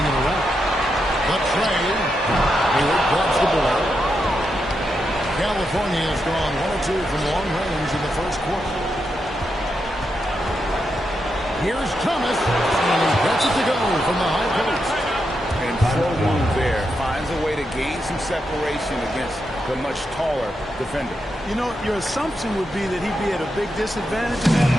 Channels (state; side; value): normal; both; correlation 0.85